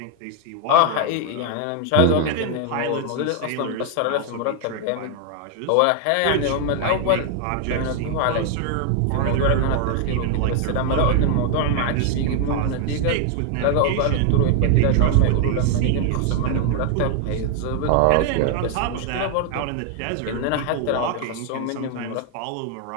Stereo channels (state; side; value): different; both; correlation 0.00